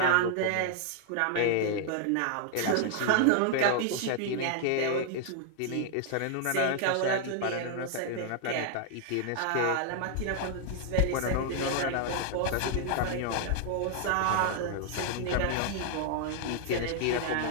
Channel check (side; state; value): both; different; correlation 0.00